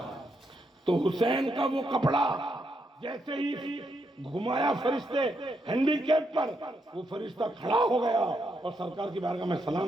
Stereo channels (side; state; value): both; normal; correlation 0.79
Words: تو حسین کا وہ کپڑا جیسے ہی گھمایا فرشتے ہینڈی کیپ پر، وہ فرشتہ کھڑا ہو گیا اور سرکار کی بارگاہ میں